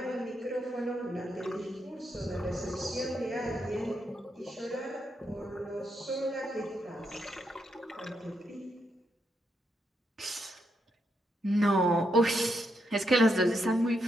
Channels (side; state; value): both; normal; correlation 0.81